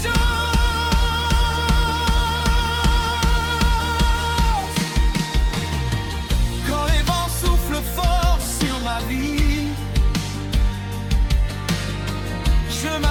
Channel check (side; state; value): both; identical; correlation 1.00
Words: chose. Quand les vents soufflent fort sur ma vie, je